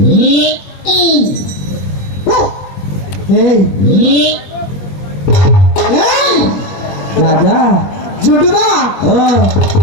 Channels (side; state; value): right; late; 21 ms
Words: এই, দাদা, জুটুদা, ও